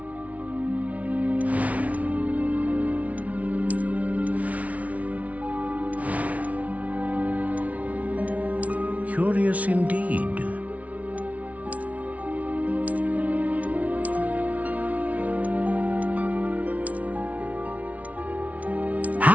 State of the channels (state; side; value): late; left; 0.068 ms